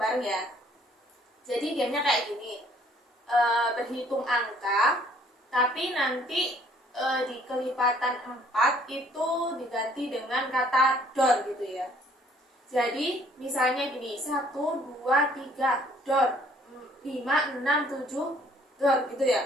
ya. Jadi gamenya kayak gini. Berhitung angka, tapi nanti di kelipatan 4 itu diganti dengan kata dor gitu ya. Jadi misalnya gini, 1 2 3 dor, 5 6 7 dor gitu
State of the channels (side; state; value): both; normal; correlation 0.60